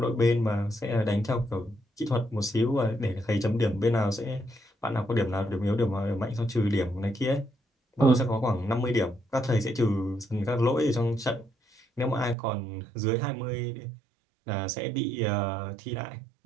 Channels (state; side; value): drops out; left; at 12.4 s